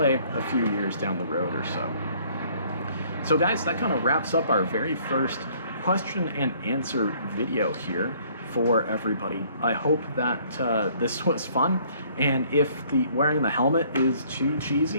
a few years down the road or so. So guys, that kind of wraps up our very first question and answer video here for everybody. I hope that this was fun, and if wearing the helmet is too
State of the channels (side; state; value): both; inverted; correlation -0.60